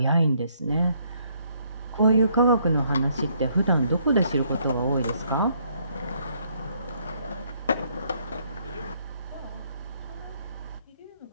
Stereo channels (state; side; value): inverted; both; correlation -0.69